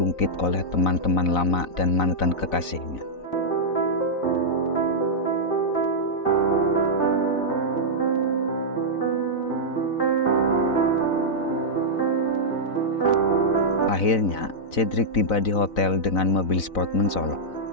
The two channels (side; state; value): right; late; 4.0 ms